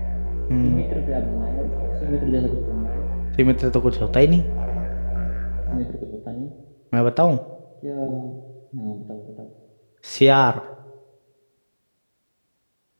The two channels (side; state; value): both; inverted; correlation -1.00